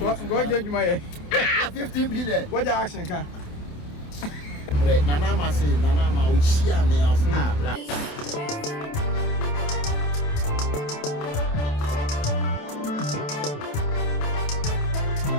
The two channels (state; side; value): late; right; 28 ms